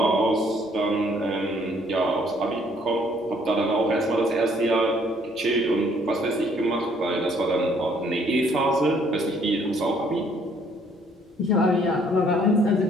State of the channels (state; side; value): normal; both; correlation 0.63